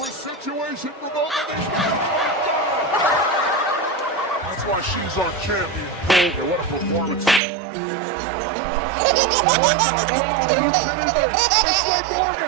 situation for both of these guys. That's why she's our champion. Boulder, what a performance. Oh, look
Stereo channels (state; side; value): drops out; left; at 7.4 s